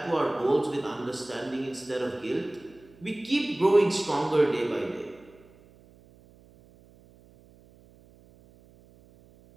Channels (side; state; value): right; noise; hum, 26 dB below the sound